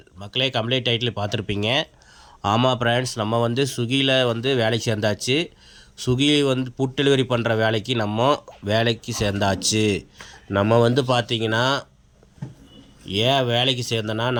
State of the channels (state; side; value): identical; both; correlation 1.00